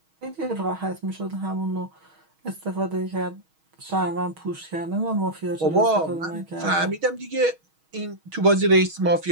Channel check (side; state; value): left; late; 6.3 ms